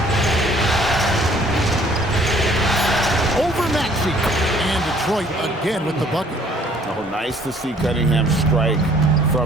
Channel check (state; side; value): normal; both; correlation 0.58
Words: Over Maxey. And Detroit again with the bucket. Oh, nice to see Cunningham strike